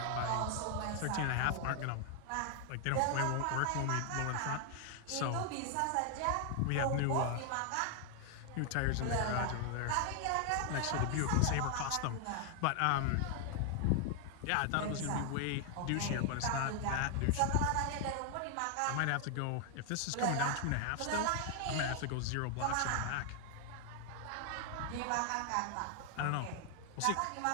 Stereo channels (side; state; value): both; different; correlation 0.00